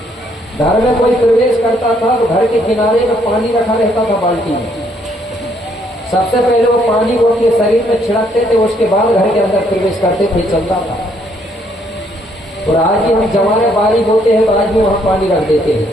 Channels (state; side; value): normal; both; correlation 0.69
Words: घर में कोई प्रवेश करता था तो घर के किनारे में पानी रखा रहता था बाल्टी में, सबसे पहले वो पानी को अपने शरीर में छिड़कते थे, उसके बाद घर के अंदर प्रवेश करते थे, चलता था। और आज भी हम जमाने बारी बोते हैं तो आज भी वहां पानी रख देते हैं,